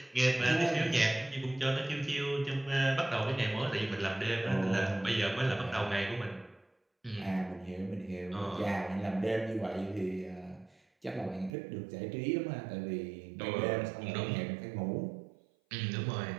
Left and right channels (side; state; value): left; drops out; at 11.5 s